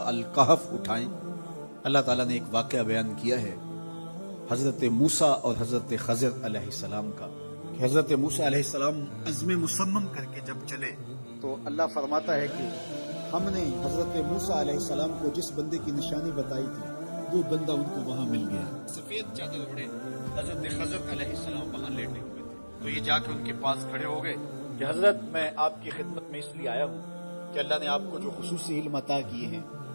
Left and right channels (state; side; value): inverted; both; correlation -1.00